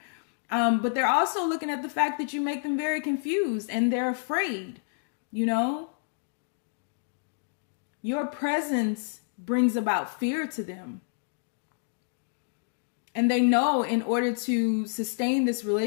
But they're also looking at the fact that you make them very confused and they're afraid, you know? Your presence brings about fear to them. And they know in order to sustain this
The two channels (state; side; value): silent; right; digital silence